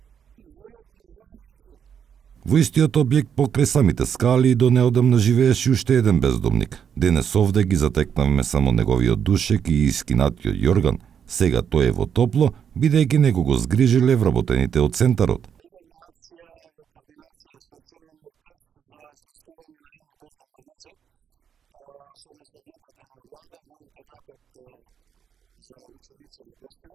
Ни вода, ни струја. Во истиот објект покрај самите скали до неодамна живееше уште еден бездомник. Денес овде ги затекнавме само неговиот душек и искинатиот јорган. Сега тој е во топло, бидејќи него го згрижиле вработените од центарот. Имавме акција во координација со Црвениот крст за сместување на едно бездомно лице, согласно одлуката на влада во интернатот за ученици во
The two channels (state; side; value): quieter; left; 7.9 dB